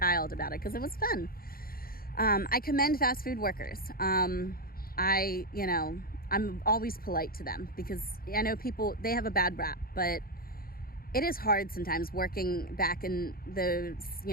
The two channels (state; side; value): late; right; 0.43 ms